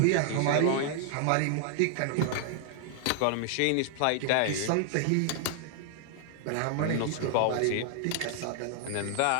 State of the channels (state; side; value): different; both; correlation 0.00